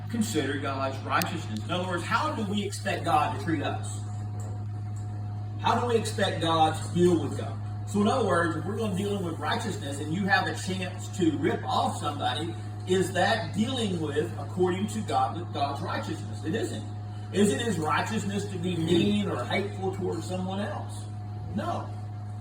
consider God's righteousness. In other words, how do we expect God to treat us? How do we expect God to deal with God? So in other words, if we're going to deal with righteousness and you have a chance to rip off somebody, is that dealing with according to God's righteousness? It isn't. Is it his righteousness to be mean or hateful towards someone else? No.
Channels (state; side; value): identical; both; correlation 1.00